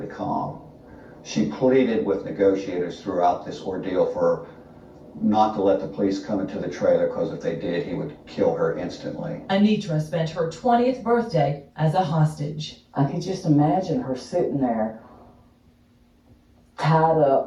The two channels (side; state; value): both; identical; correlation 1.00